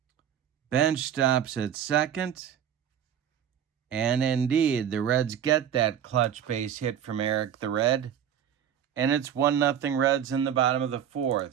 Bench stops at second. And indeed, the Reds get that clutch base hit from Eric the Red. And it's 1-0 Reds in the bottom of the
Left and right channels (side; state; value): left; quieter; 9.4 dB